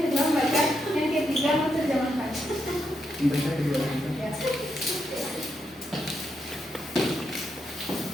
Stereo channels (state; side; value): normal; both; correlation 0.81